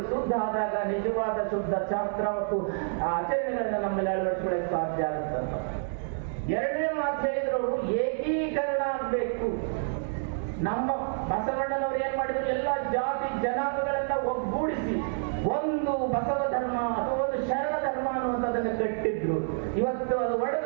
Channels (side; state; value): left; silent; digital silence